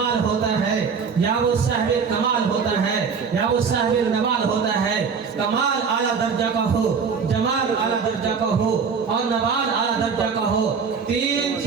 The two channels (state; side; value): quieter; left; 5.9 dB